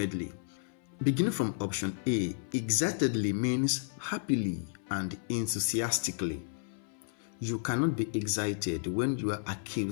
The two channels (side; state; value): right; silent; 56 dB below the other